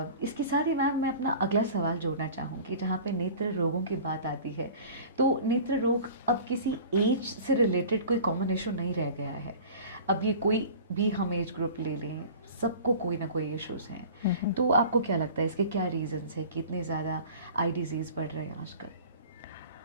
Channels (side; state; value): both; inverted; correlation -0.41